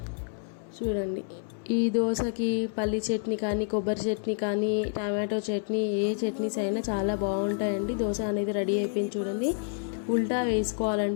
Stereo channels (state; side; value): silent; right; 57 dB below the other